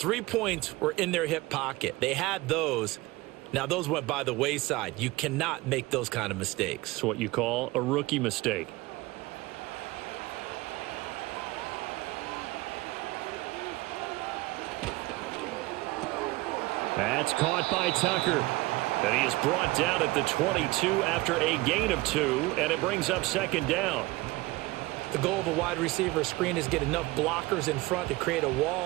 points were in their hip pocket. They had those. Now, those went by the wayside. You cannot make those kind of mistakes. It's what you call a rookie mistake. That's caught by Tucker. And he is brought down at the 22 after a gain of 2, and it brings up second down. The goal of a wide receiver screen is get enough blockers in front to create a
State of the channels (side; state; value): left; quieter; 20.5 dB